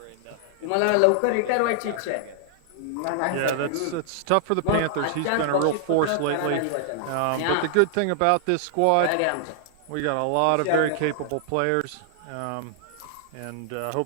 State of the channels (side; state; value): both; different; correlation 0.00